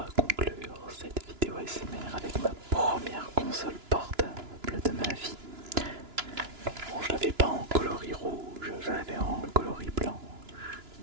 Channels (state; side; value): late; left; 2.9 ms